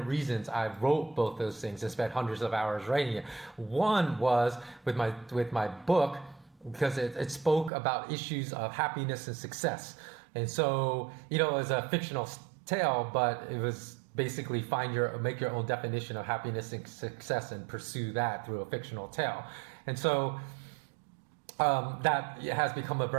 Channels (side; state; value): left; drops out; at 7.7 s